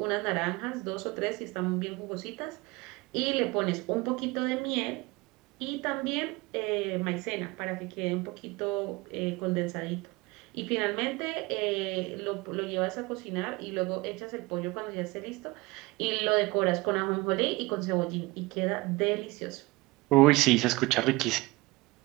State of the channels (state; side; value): quieter; left; 23.0 dB